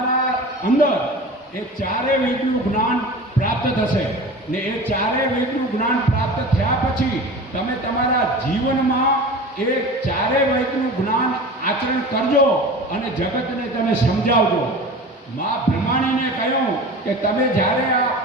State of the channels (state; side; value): normal; both; correlation 0.35